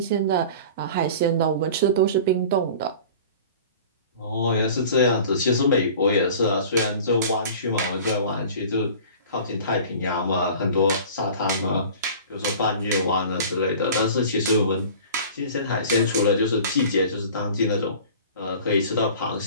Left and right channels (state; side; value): inverted; both; correlation -0.42